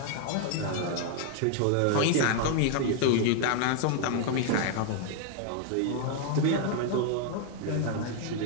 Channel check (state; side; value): different; both; correlation 0.00